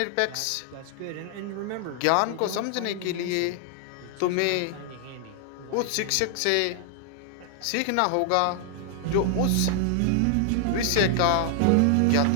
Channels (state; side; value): different; both; correlation 0.00